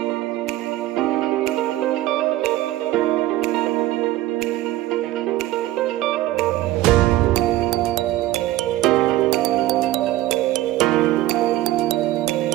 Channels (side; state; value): left; quieter; 15.9 dB